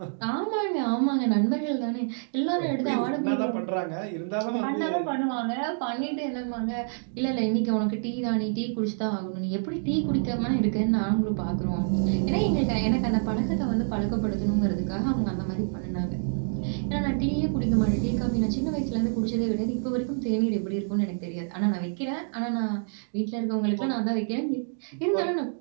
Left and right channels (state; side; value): silent; left; digital silence